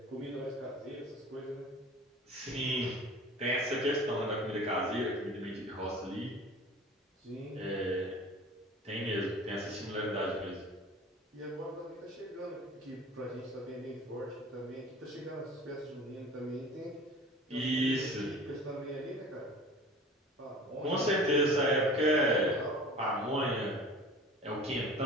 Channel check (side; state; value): both; normal; correlation 0.41